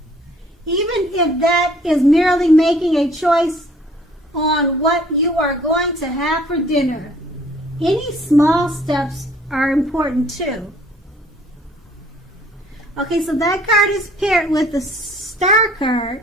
Even if that is merely making a choice on what you are going to have for dinner. Any small steps are important too. Okay, so that card is paired with the Star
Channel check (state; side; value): normal; both; correlation 0.57